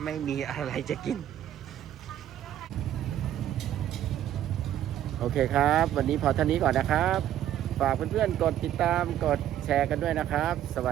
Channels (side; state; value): left; quieter; 11.6 dB